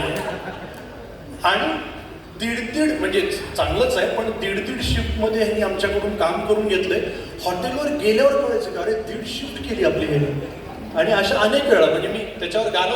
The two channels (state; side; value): identical; both; correlation 1.00